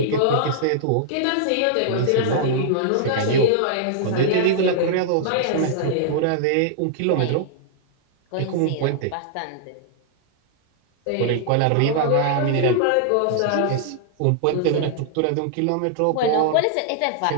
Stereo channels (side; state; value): both; different; correlation -0.01